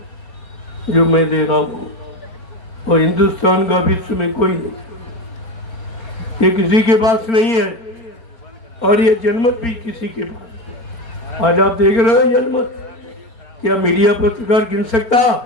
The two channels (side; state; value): right; late; 4.4 ms